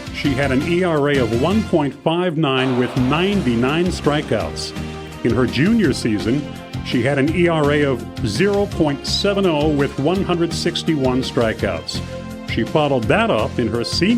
she had an ERA of 1.59 with 99 strikeouts. In her junior season, she had an ERA of 0.70 with 161 strikeouts. She followed that up in her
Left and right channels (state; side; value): identical; both; correlation 1.00